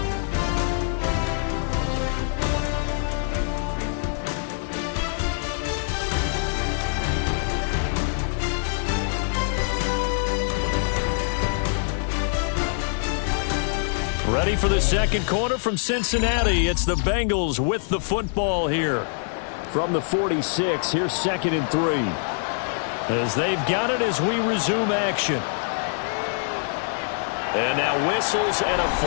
Ready for the second quarter from Cincinnati. It's the Bengals with the football here. From the 46, here's 2nd and 3. As they've got it as we resume action. And now whistles and a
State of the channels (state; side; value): silent; right; digital silence